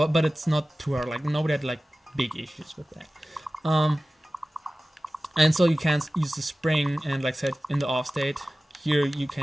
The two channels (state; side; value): normal; both; correlation 0.96